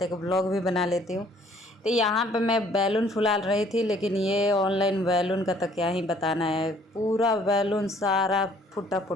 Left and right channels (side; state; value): both; normal; correlation 0.59